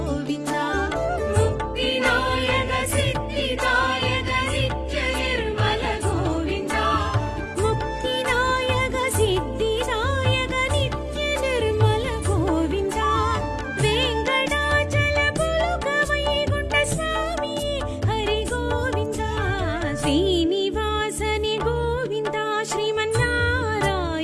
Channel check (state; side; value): identical; both; correlation 1.00